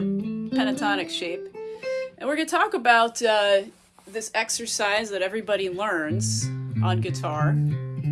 pentatonic shape, and we're going to talk about this exercise that everybody learns on guitar.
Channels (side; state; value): both; identical; correlation 1.00